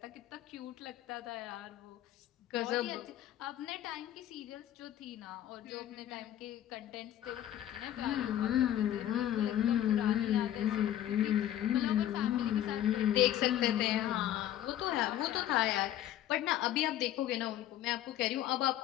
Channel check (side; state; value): right; quieter; 12.0 dB